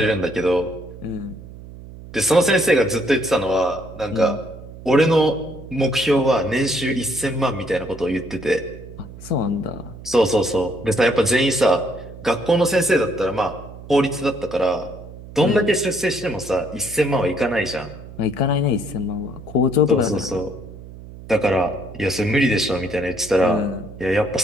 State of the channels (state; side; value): noise; right; hum, 16 dB below the sound